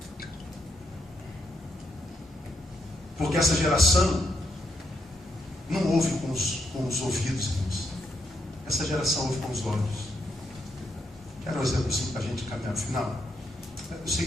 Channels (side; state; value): both; normal; correlation 0.79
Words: Porque essa geração não ouve com os ouvidos, irmãos. Essa geração ouve com os olhos. Quero um exemplo assim para a gente caminhar no final. Eu